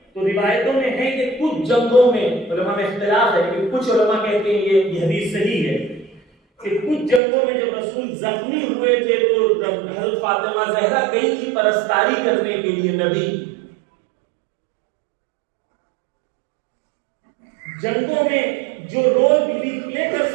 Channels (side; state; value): left; drops out; at 7.2 s